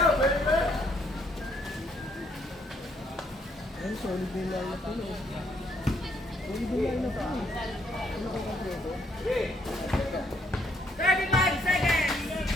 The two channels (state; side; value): normal; both; correlation 0.70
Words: Ayun, solid din lang na ito. Solid din lang na ito. Ano ko kompleto? 35 seconds.